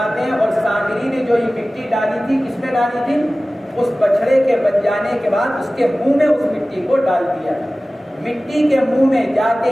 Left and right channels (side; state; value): both; normal; correlation 0.97